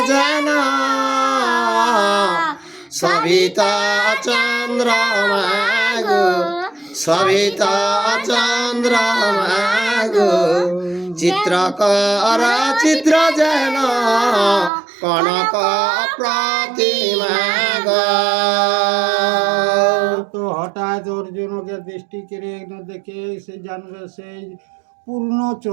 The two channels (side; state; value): left; drops out; at 14.7 s